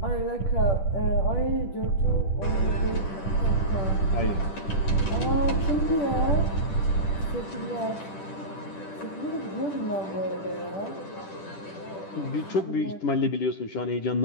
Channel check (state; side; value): late; right; 10 ms